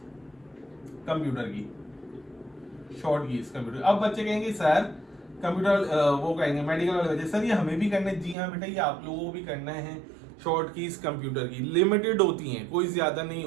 कंप्यूटर की, शॉर्ट कीज कंप्यूटर। अब बच्चे कहेंगे सर कंप्यूटर वो कहेंगे मेडिकल वाले बच्चे, सर ये हमें भी करना है। जी हाँ बेटा, ये आप लोगों को भी करना है। शॉर्ट कीज कंप्यूटर की लिमिटेड होती हैं, कोई ज्यादा नहीं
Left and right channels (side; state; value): left; drops out; at 8.3 s